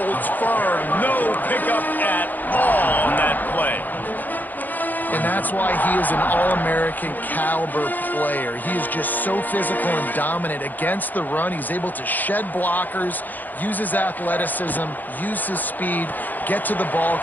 firm. No pickup at all on that play. And that's why he is an All-American caliber player. He is just so physical and dominant against the run. He's able to shed blockers, use his athleticism, use his speed, get to the ball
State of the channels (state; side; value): late; right; 0.085 ms